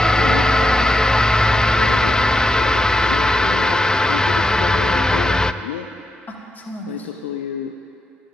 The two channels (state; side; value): normal; both; correlation 0.86